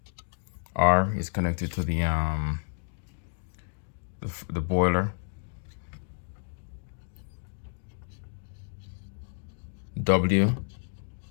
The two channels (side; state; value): right; silent; digital silence